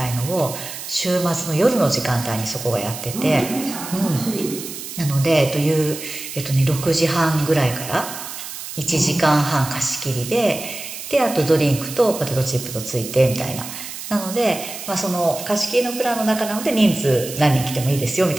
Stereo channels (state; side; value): noise; right; hiss, 10 dB below the sound